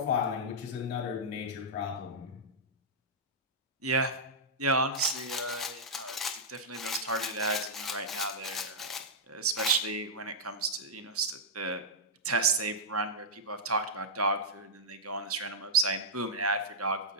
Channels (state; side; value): normal; both; correlation -0.11